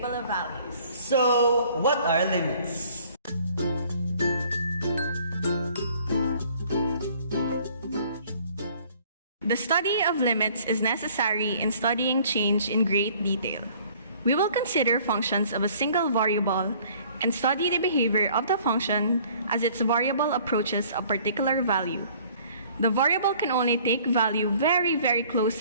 of values. So, what are limits? The study of limits is necessary in studying change in great detail. We will consider functions of a single variable and study the behavior of the function as its variable approaches a particular value. The variable can only take value very, very close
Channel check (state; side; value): inverted; both; correlation -0.55